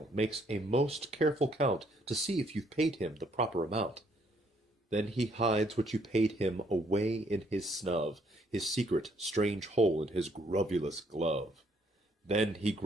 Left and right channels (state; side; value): normal; both; correlation 0.68